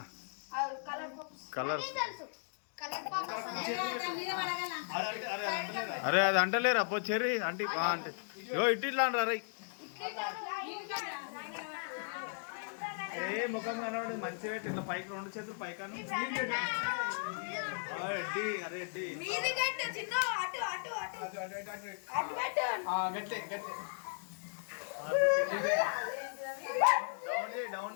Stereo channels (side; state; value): right; silent; digital silence